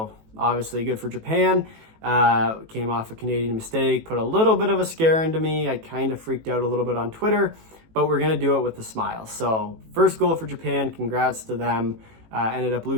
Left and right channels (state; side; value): late; left; 18 ms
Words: obviously good for Japan. Came off a Canadian mistake, put a little bit of a scare into me. I kind of freaked out a little bit on Twitter, but we're going to do it with a smile. So first goal for Japan, congrats to them. Ended up